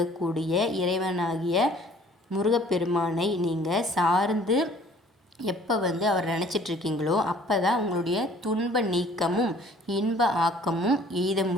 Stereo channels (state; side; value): normal; both; correlation 0.54